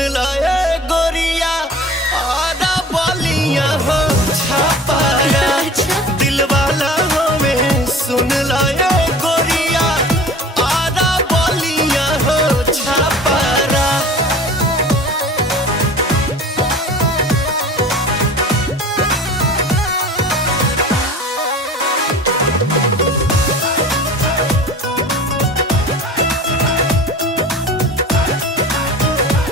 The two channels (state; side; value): normal; both; correlation 0.40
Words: लाए गोरिया आधा बलिया हो छापारा। दिल वाला हमें सुन लाए गोरिया आधा बलिया हो छापारा।